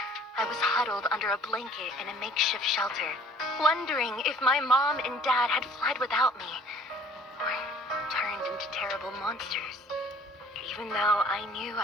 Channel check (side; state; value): both; normal; correlation 0.53